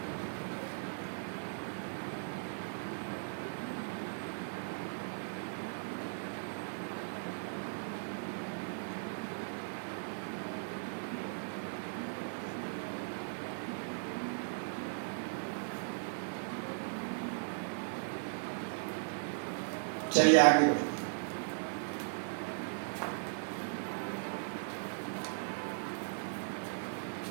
चलिए आगे बढ़िए।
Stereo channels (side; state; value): left; silent; digital silence